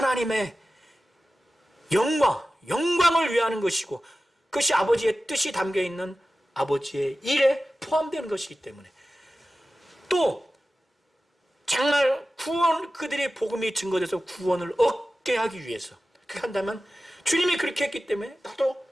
영광을 위하는 것이고, 그것이 아버지의 뜻이 담겨있는 아버지의 일에 포함되는 것이기 때문에, 또 정말 그들의 복음이 증거돼서 구원을 얻게 하기 위해서 그렇게 한다면, 주님이 그렇게 했기 때문에 나도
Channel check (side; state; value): both; normal; correlation 0.95